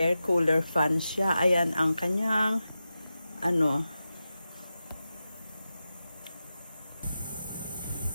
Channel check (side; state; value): both; inverted; correlation -0.92